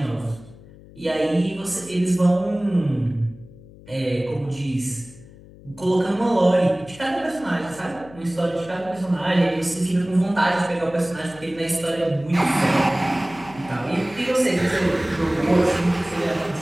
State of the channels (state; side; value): noise; left; hum, 21 dB below the sound